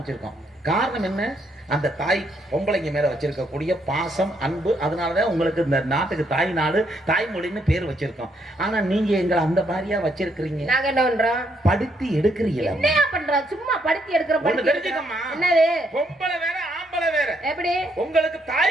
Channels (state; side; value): normal; both; correlation 0.73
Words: காரணம் என்ன? அந்த தாய் பொம்பளைங்க மேல வச்சிருக்கக்கூடிய பாசம் அன்பு. அதனாலதான் உங்களுக்கு இந்த நாட்டுக்கு தாய் நாடு தாய்மொழின்னு பேர் வச்சிருக்கோம். ஆனா நீங்க எங்களை அந்த மாதிரியா வச்சிருக்கிறீங்க. நாங்க என்ன பண்றோம்? படுத்தி எடுக்கிறீங்களா? என்ன பண்றோம்? சும்மா படுத்தி எடுக்கிற ஒண்ணு தெரிஞ்சுக்கம்மா. என்னது? பொம்பளை வேற ஆம்பளை வேற. எப்படி? உங்களுக்கு